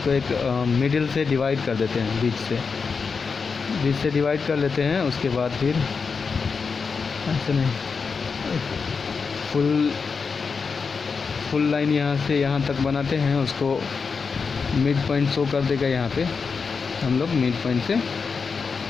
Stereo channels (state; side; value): quieter; right; 5.2 dB